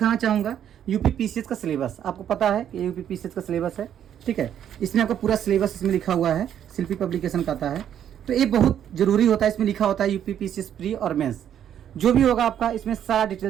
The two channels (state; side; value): quieter; left; 9.8 dB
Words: चाहूँगा यूपी पीसीएस का सिलेबस। आपको पता है कि यूपी पीसीएस का सिलेबस है, ठीक है। इसमें आपका पूरा सिलेबस इसमें लिखा हुआ है, शिल्पी पब्लिकेशन का आता है। तो ये बहुत जरूरी होता है, इसमें लिखा होता है यूपी पीसीएस प्री और मेंस जो भी होगा आपका, इसमें सारा